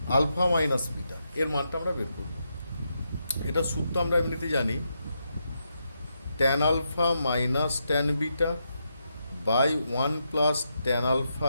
alpha minus beta, এর মানটা আমরা বের করব। এটা সূত্র আমরা এমনিতে জানি, tan alpha minus tan beta by 1 plus tan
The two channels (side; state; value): both; inverted; correlation -0.83